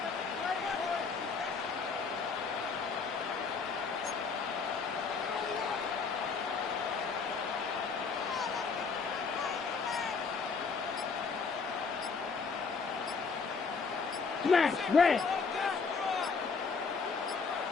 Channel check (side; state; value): right; quieter; 5.1 dB